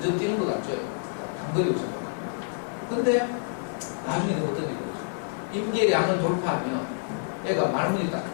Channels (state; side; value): silent; right; digital silence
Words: 뛰는 것 같죠. 단거리 우선. 근데 나중에 어떤 일이 있죠. 임계량을 돌파하면 얘가 말문이 딱